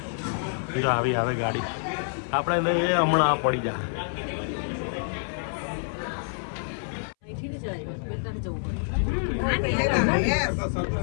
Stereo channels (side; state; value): right; silent; 60 dB below the other